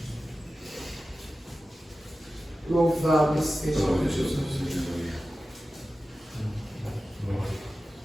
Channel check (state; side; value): normal; both; correlation 0.94